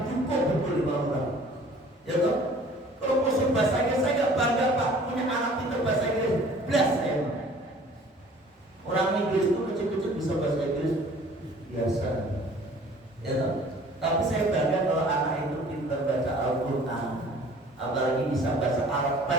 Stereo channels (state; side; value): normal; both; correlation 0.51